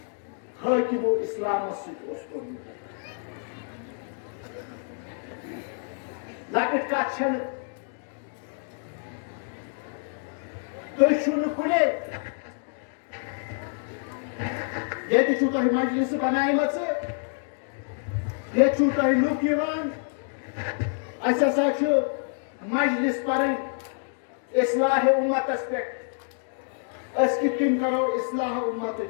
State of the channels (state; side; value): silent; right; 59 dB below the other